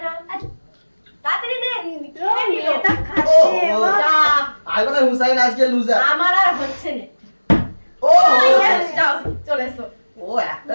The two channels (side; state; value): both; inverted; correlation -1.00